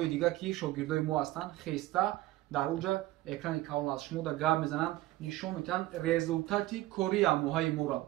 дигар ки шогирдои мо ҳастанд, хеста дар оҷа экрани калон аст. Шумо дар гап мезананд, нишон медиҳанд результати кори амоҳаи моро.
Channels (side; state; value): left; quieter; 17.2 dB